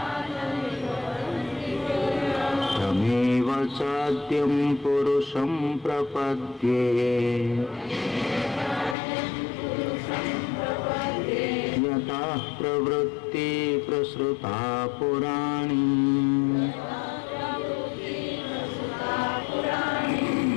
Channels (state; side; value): drops out; right; at 9.0 s